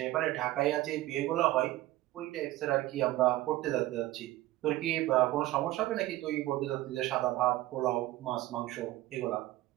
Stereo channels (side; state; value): left; quieter; 16.7 dB